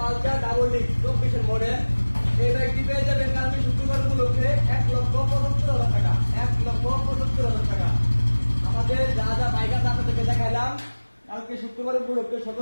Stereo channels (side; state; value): both; inverted; correlation -1.00